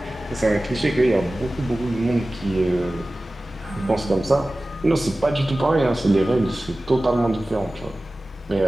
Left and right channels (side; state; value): both; normal; correlation 0.96